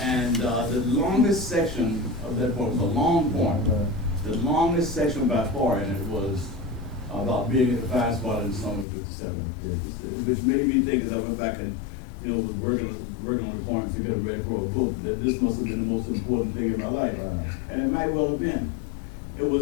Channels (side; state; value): right; drops out; at 8.8 s